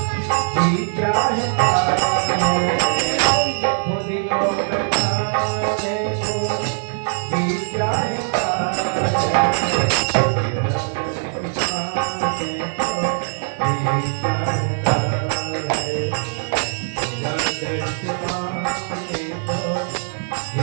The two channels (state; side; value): silent; left; 65 dB below the other